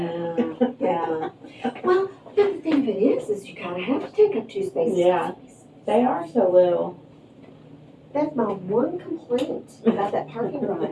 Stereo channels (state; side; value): identical; both; correlation 1.00